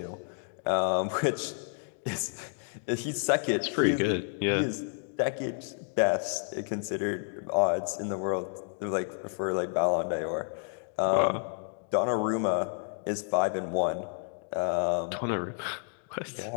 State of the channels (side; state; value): right; silent; 58 dB below the other